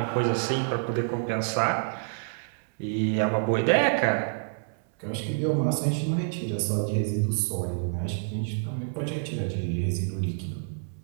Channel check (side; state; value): left; silent; 60 dB below the other